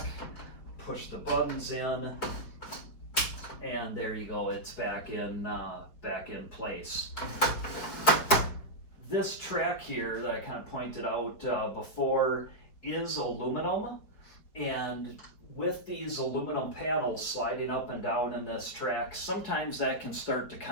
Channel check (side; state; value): right; late; 4.9 ms